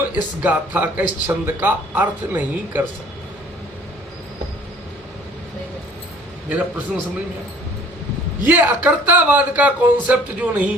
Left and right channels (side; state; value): both; normal; correlation 0.53